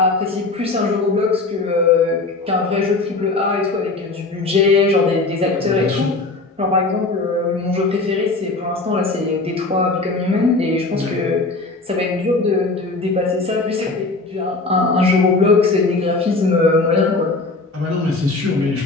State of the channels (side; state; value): right; quieter; 3.4 dB